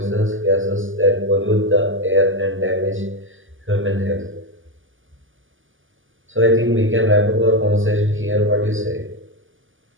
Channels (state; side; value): late; left; 0.58 ms